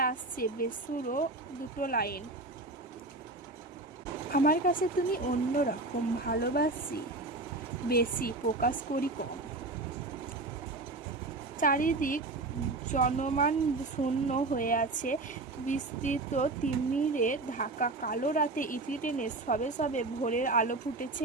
আসছে বেসুরো দুটো লাইন, আমার কাছে তুমি অন্য রকম, ভালোবাসি বেশি, প্রকাশ করি কম। চারিদিক জনমান শূন্য হয়ে আছে। বিস্তৃত তিমিরে ঢাকা কালো রাতে ইতি টেনে সবে সবে ভোরের আলো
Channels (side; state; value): left; quieter; 3.1 dB